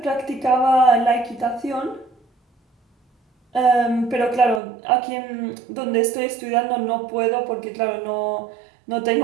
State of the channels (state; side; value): drops out; left; at 4.6 s